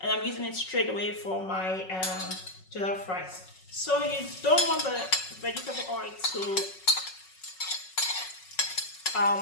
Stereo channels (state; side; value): late; right; 5.4 ms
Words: I'm using it straight away for my jollof rice. So you don't want the vegetable oil to